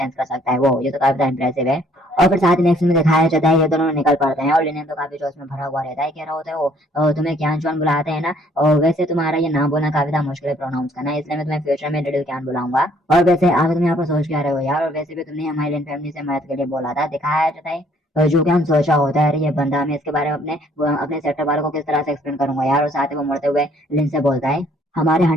कर सकता है, वो ये तो काफी इंप्रेसिव है। और फिर साथ ही नेक्स्ट में दिखाया जाता है ये दोनों निकल पड़ते हैं और लिनियन तो काफी जोश में भरा हुआ रहता है, कह रहा होता है वो तुम्हें ज्ञान चौन बुलाते हैं ना, और वैसे तुम्हारा ये नाम बोलना काफी मुश्किल है प्रोनाउंस करना, इसलिए मैं तुम्हें फ्यूचर में लिटिल ज्ञान बुलाऊंगा। और वैसे आगे तुम यहाँ पर सोच क्या रहे हो यार, और वैसे भी तुमने हमारी लिन फैमिली से मदद के लिए बोला था। दिखाया जाता है जो कि हम सोचा होता है अरे ये बंदा, मैं इसके बारे में अपने सेक्टर वालों को किस तरह से एक्सप्लेन करूंगा यार। और साथ ही वो मुड़ते हुए लिन से बोलता है हमारे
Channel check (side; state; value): both; normal; correlation 0.62